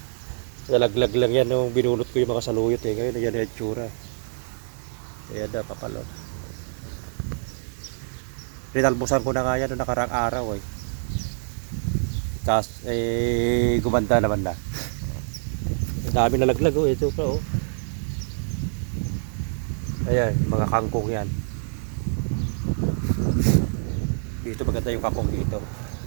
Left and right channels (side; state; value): left; silent; digital silence